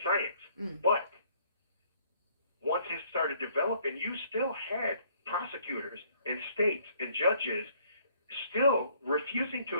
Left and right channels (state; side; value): inverted; both; correlation -0.63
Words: science. But once it started developing, you still had prosecutors and states and judges still refusing to